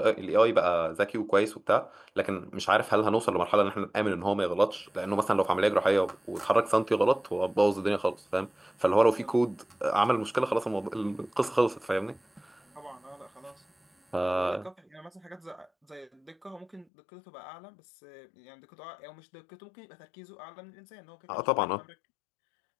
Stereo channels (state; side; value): drops out; right; at 16.9 s